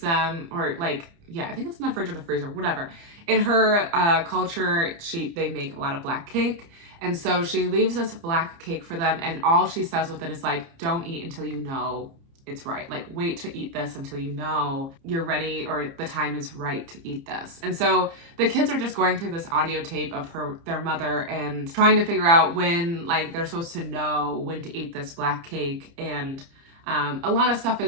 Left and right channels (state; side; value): late; left; 30 ms